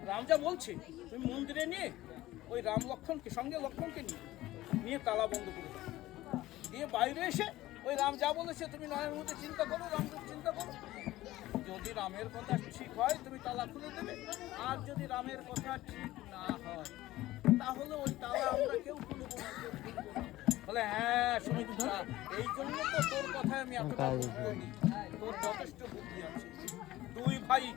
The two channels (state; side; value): quieter; right; 16.4 dB